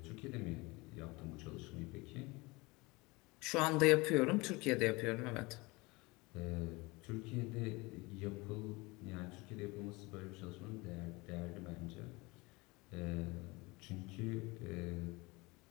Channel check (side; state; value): right; quieter; 24.3 dB